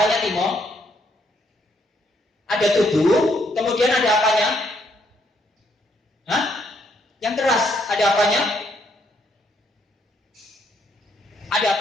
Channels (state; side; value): normal; both; correlation 0.72